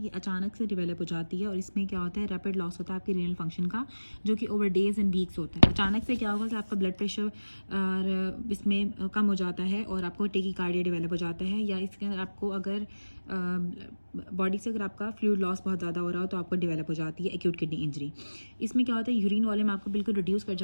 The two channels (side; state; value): both; inverted; correlation -1.00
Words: अचानक से डेवलप हो जाती है और इसमें क्या होता है, रैपिड लॉस होता है आपकी रीनल फंक्शन का, जो कि ओवर डेज एंड वीक्स होता है। अचानक से क्या होगा कि आपका ब्लड प्रेशर इसमें कम हो जाता है और आपको टेकीकार्डिया डेवलप हो जाता है, या इसके अंदर आपको अगर बॉडी से अगर आपका फ्लूइड लॉस बहुत ज़्यादा हो रहा हो तो आपको डेवलप हो जाती है एक्यूट किडनी इंजरी। इसमें क्या होता है, यूरिन वॉल्यूम आपको बिल्कुल रिड्यूस कर